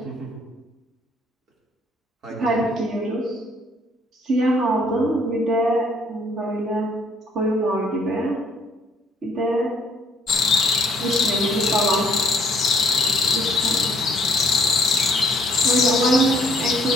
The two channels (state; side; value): normal; both; correlation 0.64